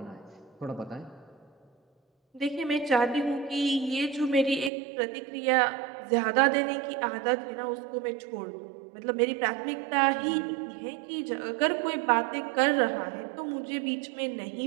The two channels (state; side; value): drops out; left; at 4.7 s